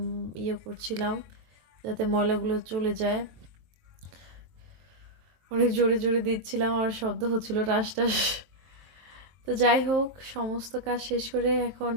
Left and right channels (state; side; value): late; left; 23 ms